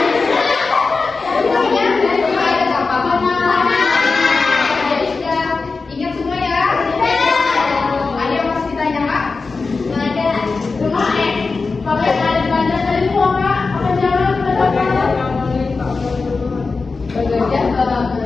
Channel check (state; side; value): quieter; right; 4.2 dB